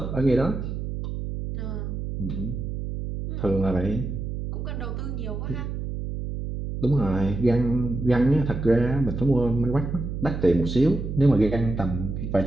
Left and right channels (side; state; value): right; noise; hum, 5 dB below the sound